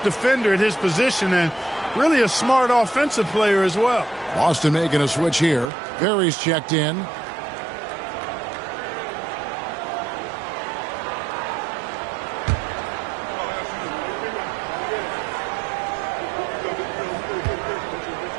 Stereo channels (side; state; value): left; drops out; at 5.7 s